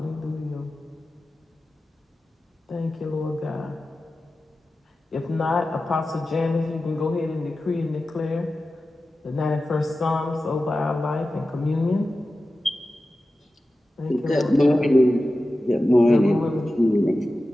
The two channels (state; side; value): normal; both; correlation 0.94